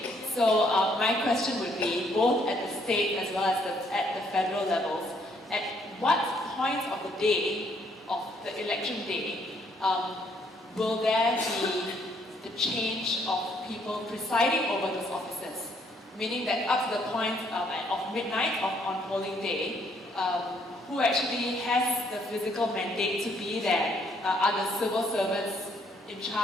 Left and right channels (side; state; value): both; normal; correlation 0.68